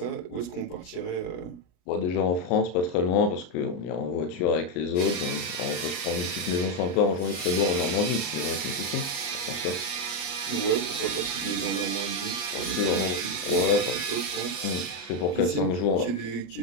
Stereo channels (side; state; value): right; late; 34 ms